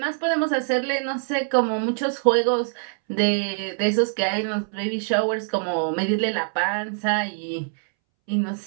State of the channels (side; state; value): left; silent; 63 dB below the other